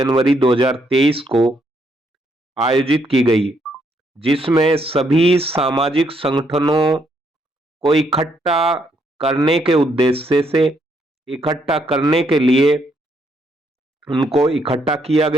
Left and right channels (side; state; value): both; normal; correlation 0.74